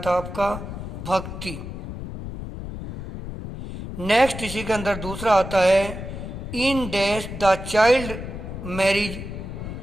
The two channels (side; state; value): left; noise; rumble, 8 dB below the sound